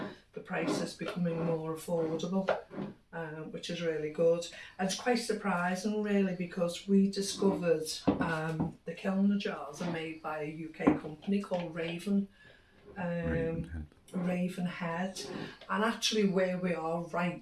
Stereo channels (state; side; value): identical; both; correlation 1.00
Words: price is becoming more affordable, which is really good. And it's quite surprising really, because we discovered the kilner jars are made by a UK company called Ravenhead, and actually where we are